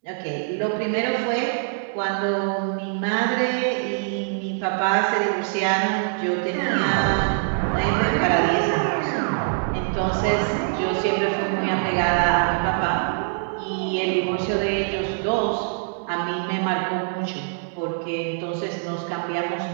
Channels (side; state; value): left; silent; digital silence